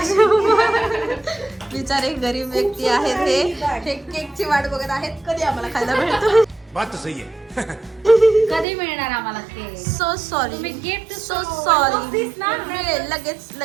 बिचारे गरीब व्यक्ती आहेत. हे केकची वाट बघत आहेत कधी आम्हाला खायला भेटतो. बात तो सही है. कधी मिळणार आम्हाला केक? सो सॉरी, तुम्ही gift सो सॉरी. मिळेल लगेच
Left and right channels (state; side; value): drops out; left; at 8.7 s